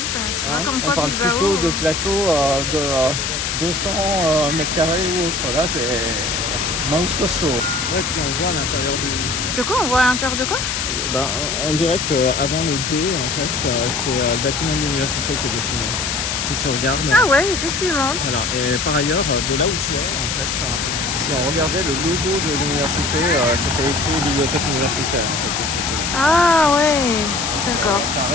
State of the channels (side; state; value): left; noise; hiss, 1 dB below the sound